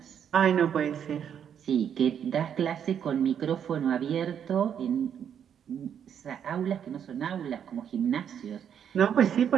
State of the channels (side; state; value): left; quieter; 8.5 dB